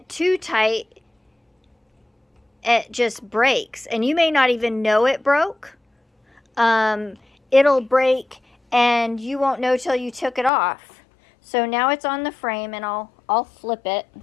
too tight, it just breaks, and you may not even know it broke. It'll break, and you won't know till you took it off. So now it's on the frame, and I'll flip it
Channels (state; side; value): drops out; right; at 10.5 s